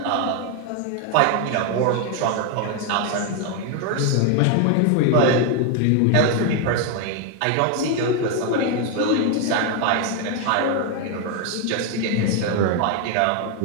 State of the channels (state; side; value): different; both; correlation 0.01